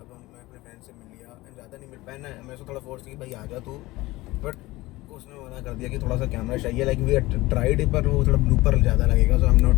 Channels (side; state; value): right; quieter; 19.5 dB